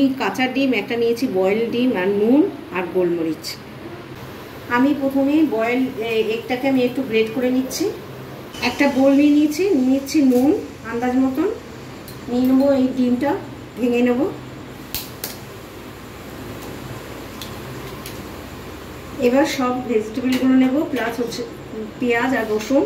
কাঁচা ডিম, একটা নিয়েছি বয়েল ডিম, আর নুন আর গোলমরিচ। আমি প্রথমে বয়েল এগটাকে আমি একটু গ্রেট করে নিচ্ছি। একটা বোল নিয়ে নিচ্ছি নুন আন্দাজ মতন, নিয়ে নেবো এই ডিমটা ভেঙে নেবো। এবার সব ভেজিটেবলগুলো নেব, প্লাস হচ্ছে পেঁয়াজ আর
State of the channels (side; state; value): both; identical; correlation 1.00